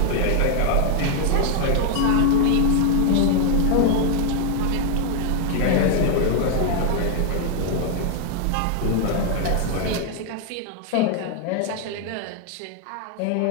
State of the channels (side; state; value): both; different; correlation 0.00